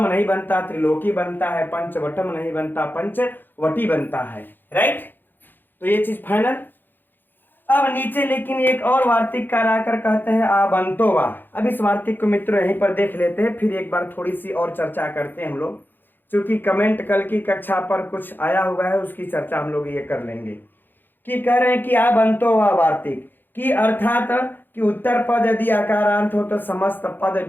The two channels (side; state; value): right; late; 0.093 ms